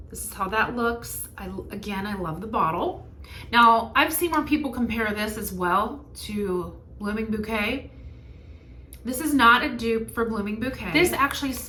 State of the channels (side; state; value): both; identical; correlation 1.00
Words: This is how that looks. Again, I love the bottle. Now, I've seen more people compare this as well to Blooming Bouquet. This is not a dupe for Blooming Bouquet. This actually